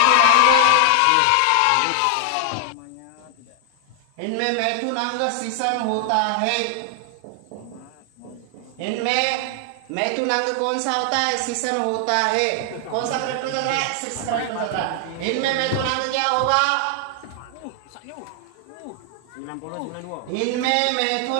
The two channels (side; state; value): both; different; correlation 0.00